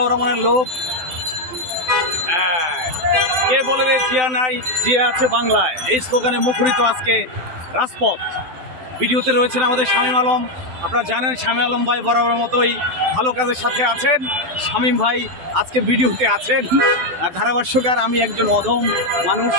রহমানের লোক। কে বলে রে জিয়া নাই, জিয়া আছে বাংলায়, এই স্লোগানে মুখরিত আজকে রাজপথ। ভিডিওতে রয়েছেন আমাদের শামীম আলম। আপনারা জানেন শামীম আলম ভাই বরাবর মতোই ভালো কাজের সাথে আছেন। শামীম ভাই আজকে ভিডিওতে আছেন। ধারাভাষ্যকার আমি একজন অধম মানুষ,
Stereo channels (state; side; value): late; left; 12 ms